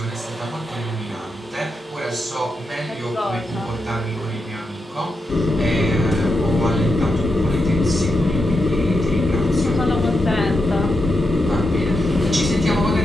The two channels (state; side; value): normal; both; correlation 0.86